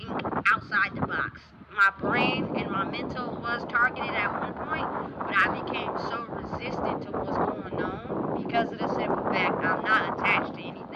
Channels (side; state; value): both; identical; correlation 1.00